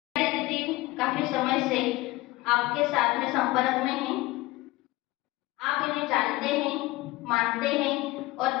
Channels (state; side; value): quieter; right; 19.7 dB